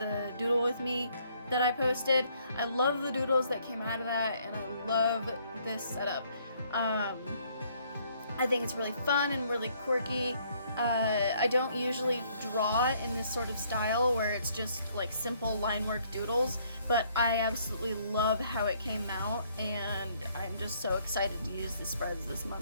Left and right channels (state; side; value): inverted; both; correlation -0.66